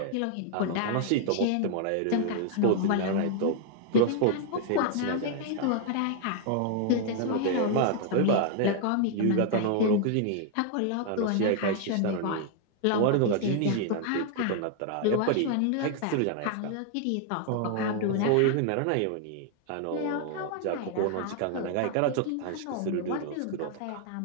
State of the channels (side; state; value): both; different; correlation 0.00